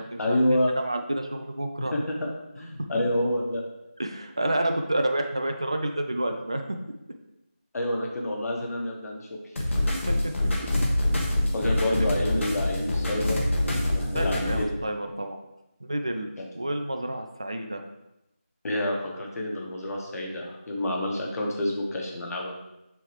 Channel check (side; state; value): both; inverted; correlation -0.89